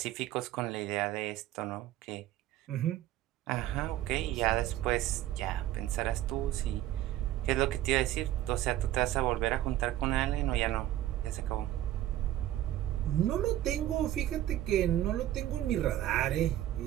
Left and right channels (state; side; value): quieter; left; 13.4 dB